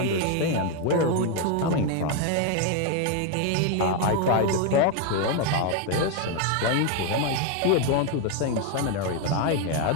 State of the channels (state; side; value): different; both; correlation 0.01